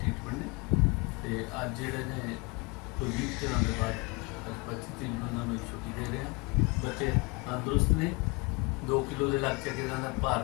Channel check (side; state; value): right; quieter; 28.2 dB